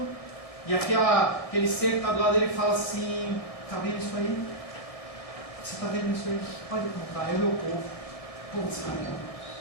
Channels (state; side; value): late; right; 1.6 ms